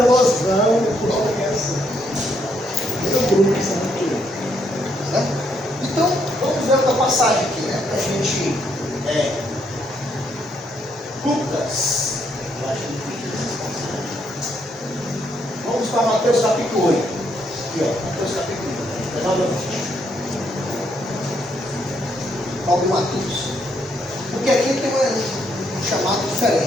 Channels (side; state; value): both; normal; correlation 0.74